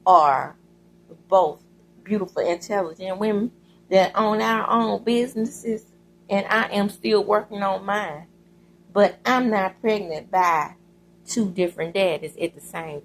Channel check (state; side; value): identical; both; correlation 1.00